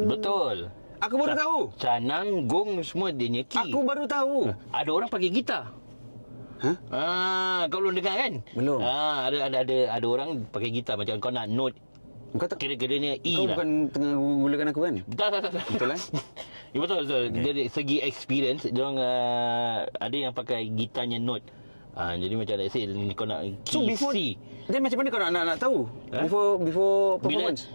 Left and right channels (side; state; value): both; inverted; correlation -1.00